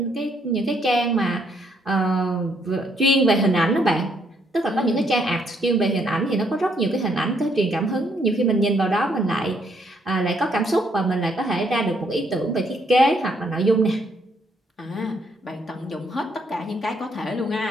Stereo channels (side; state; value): both; normal; correlation 0.71